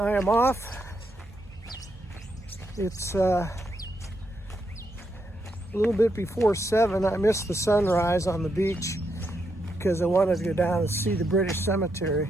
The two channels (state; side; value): normal; both; correlation 0.80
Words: am off. It's a little bit before 7. I missed the sunrise on the beach because I wanted to go down and see the British